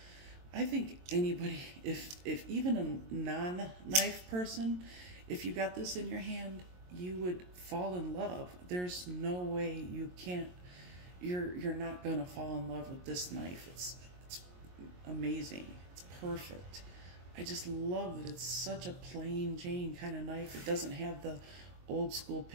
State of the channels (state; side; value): late; left; 22 ms